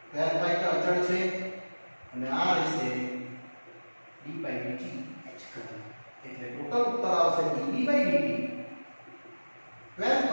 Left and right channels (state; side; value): inverted; both; correlation -1.00